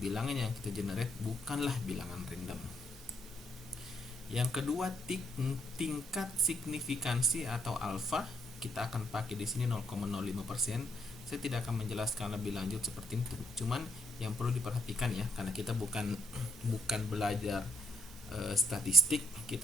yang kita generate bukanlah bilangan random. Yang kedua, tingkat signifikansi atau alfa. Kita akan pakai di sini 0,05%. Saya tidak akan menjelaskan lebih lanjut seperti itu. Cuman yang perlu diperhatikan ya, karena kita bukan belajar statistik,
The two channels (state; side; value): normal; both; correlation 0.70